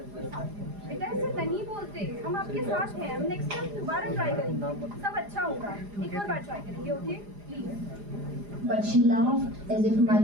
कोई साथ में। बेटा ऐसे नहीं बोलते, हम आपके साथ हैं, हम नेक्स्ट टाइम दोबारा ट्राई करेंगे, सब अच्छा होगा, एक और बार ट्राई करेंगे, okay please. But she laughed as if my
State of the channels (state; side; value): late; left; 4.9 ms